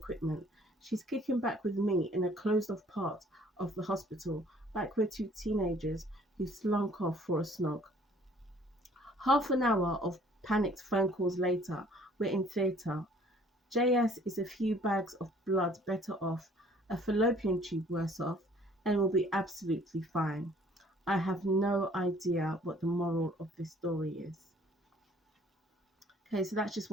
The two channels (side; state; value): both; normal; correlation 0.57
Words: she's kicking back with me in a closed-off part of the hospital, like we're two teenagers who slunk off for a snog. Half an hour of panicked phone calls later, we're in theatre. JS is a few bags of blood better off, a fallopian tube worse off, and will be absolutely fine. I have no idea what the moral of this story is. Okay, so that's just